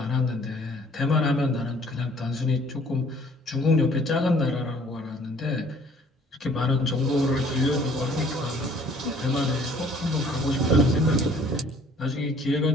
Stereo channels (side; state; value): both; normal; correlation 0.56